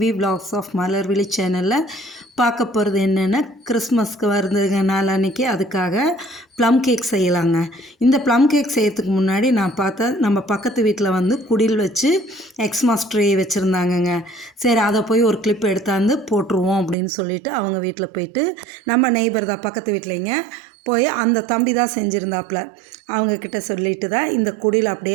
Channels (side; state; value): left; drops out; at 16.9 s